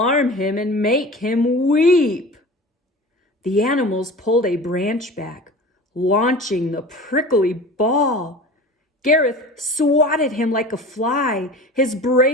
him and make him weep." The animals pulled a branch back, launching the prickly ball. Gareth swatted him like a fly. His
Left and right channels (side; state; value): both; normal; correlation 0.37